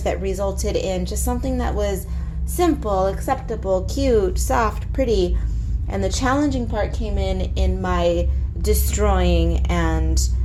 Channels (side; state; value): both; identical; correlation 1.00